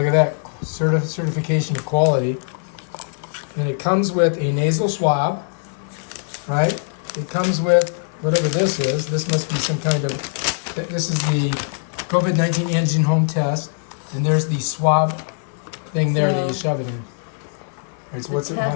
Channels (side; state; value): right; silent; 58 dB below the other